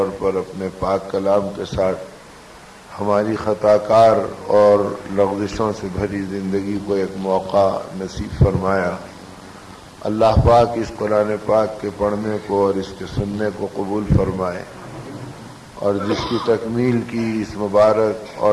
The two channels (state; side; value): identical; both; correlation 1.00